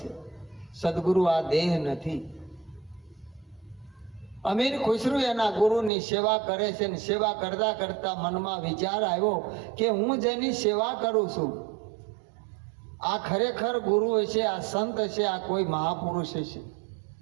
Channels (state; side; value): drops out; left; at 5.9 s